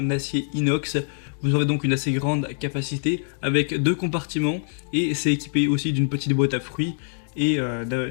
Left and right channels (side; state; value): right; silent; digital silence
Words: acier inox. Vous aurez donc une assez grande capacité avec 2 compartiments et c'est équipé aussi d'une petite boîte à fruits et